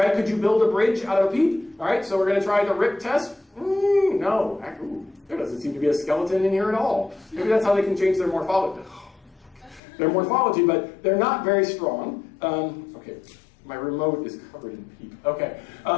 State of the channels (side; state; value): right; drops out; at 9.8 s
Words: Could you build a bridge out of a peep? All right, so we're going to try the rip test. No, there doesn't seem to be a skeleton in here at all. Maybe that's how they can change their morphology. Their morphology, but they're not very strong. Okay, my remote is covered in peep. Okay,